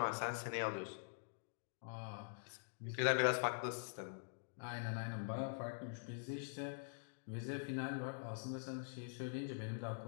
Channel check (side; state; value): right; silent; digital silence